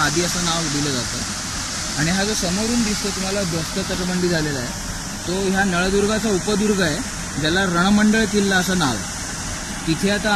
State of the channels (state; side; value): identical; both; correlation 1.00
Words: असं नाव दिलं जातं. आणि हा जो समोरून दिसतो तुम्हाला ध्वस्त तटबंदी झालेला आहे तो ह्या नळदुर्गाचा उपदुर्ग आहे, ज्याला रणमंडळ किल्ला असं नाव आहे. तिथे आता